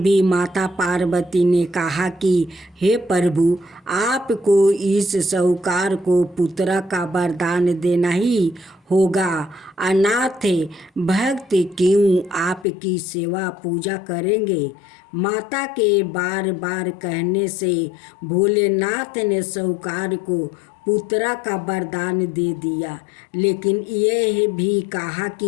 माता पार्वती ने कहा कि हे प्रभु, आपको इस साहूकार को पुत्र का वरदान देना ही होगा। अनाथ भक्त क्यों आपकी सेवा पूजा करेंगे। माता के बार बार कहने से भोलेनाथ ने साहूकार को पुत्र का वरदान दे दिया, लेकिन यह भी कहा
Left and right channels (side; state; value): right; drops out; at 12.7 s